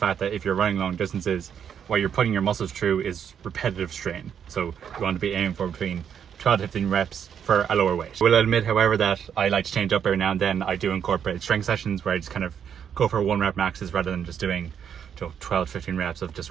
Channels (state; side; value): quieter; left; 8.2 dB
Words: that if you're running long distances, what you're putting your muscles through is repetitive strain. So you want to be aiming for between 12 to 15 reps for a lower weight. I will admit, however, that I like to change up every now and then. I do incorporate strength sessions where I just kind of go for 1 rep maxes rather than just doing 12 to 15 reps of just